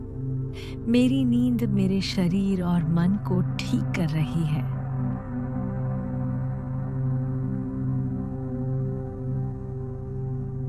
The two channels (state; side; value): identical; both; correlation 1.00